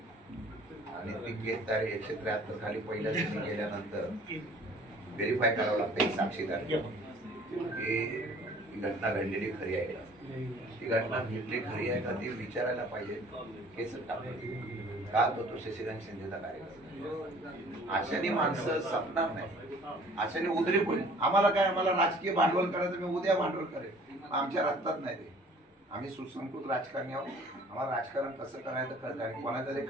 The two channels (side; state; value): both; normal; correlation 0.52